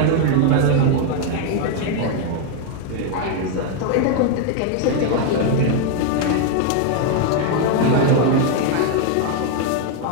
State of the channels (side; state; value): both; different; correlation 0.01